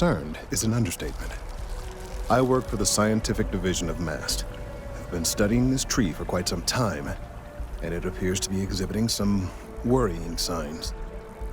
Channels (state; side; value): identical; both; correlation 1.00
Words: is an understatement. I work for the scientific division of MAST. I've been studying this tree for quite some time, and it appears to be exhibiting some worrying signs.